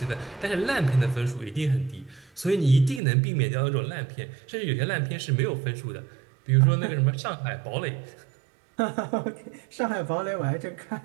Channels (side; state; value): left; drops out; at 3.0 s